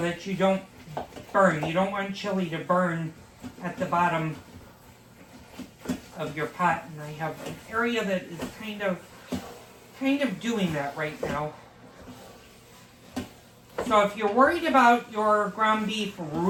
you don't burn. You don't want chili to burn at the bottom of your pot. And I have an area that is kind of doing that right now. So if you're worried about your ground beef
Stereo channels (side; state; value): both; identical; correlation 1.00